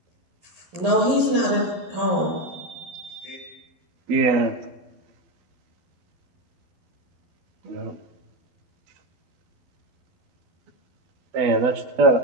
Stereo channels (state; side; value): late; left; 12 ms